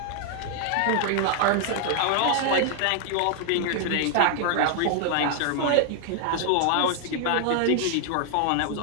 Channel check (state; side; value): different; both; correlation 0.00